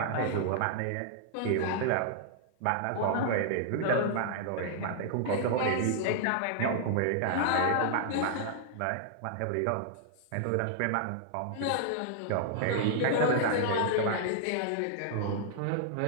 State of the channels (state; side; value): different; both; correlation -0.01